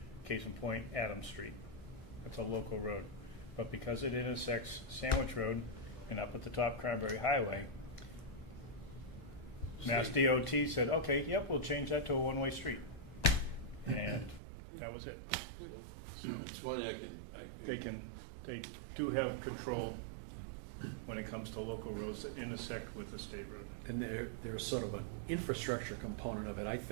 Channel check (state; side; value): drops out; left; at 14.4 s